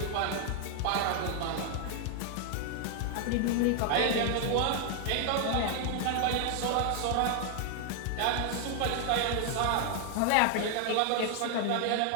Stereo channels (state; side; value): different; both; correlation 0.00